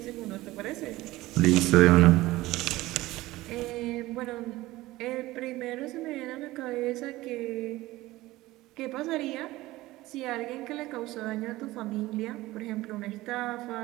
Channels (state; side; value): quieter; left; 18.1 dB